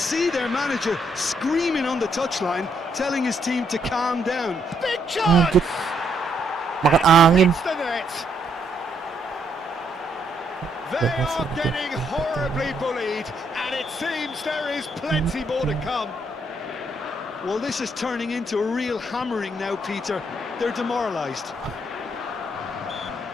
their manager screaming on the touchline, telling his team to calm down. Big chance! Anjir. Makan angin. Hits the net. They are getting horribly bullied, and it seems there is plenty more to come. Well, this is turning into a real hammering now, Peter. They're demoralised.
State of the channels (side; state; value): both; normal; correlation 0.73